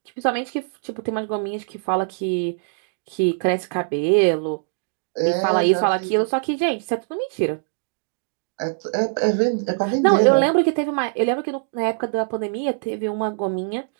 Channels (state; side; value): silent; left; digital silence